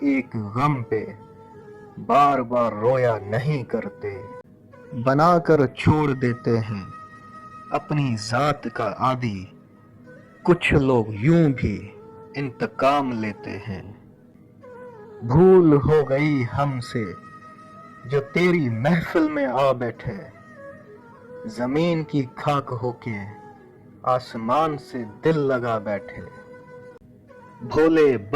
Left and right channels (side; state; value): both; identical; correlation 1.00